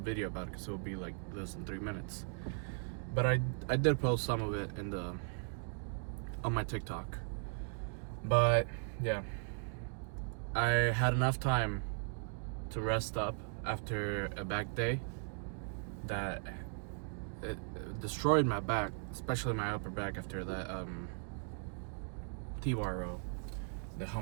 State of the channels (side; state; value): left; silent; 52 dB below the other